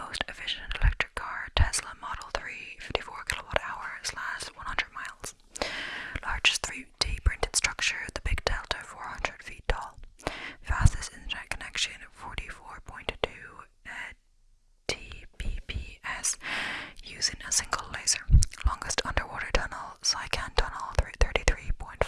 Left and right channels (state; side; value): identical; both; correlation 1.00